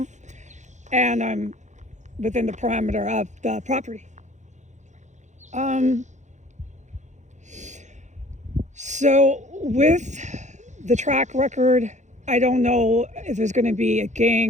and I'm within the parameter of the property. So with the track record, I don't know if there's going to be a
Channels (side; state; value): left; late; 0.34 ms